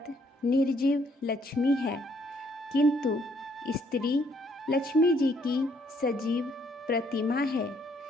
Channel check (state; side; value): normal; both; correlation 0.68